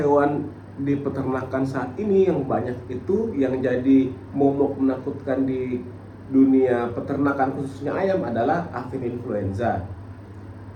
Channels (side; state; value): both; identical; correlation 1.00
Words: di peternakan saat ini yang banyak itu yang jadi momok menakutkan di dunia peternakan khususnya ayam adalah avian influenza.